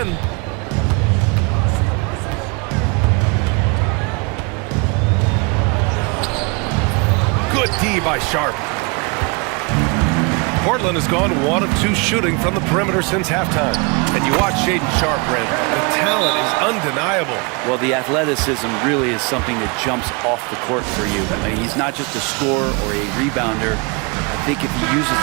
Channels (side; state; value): left; quieter; 30.6 dB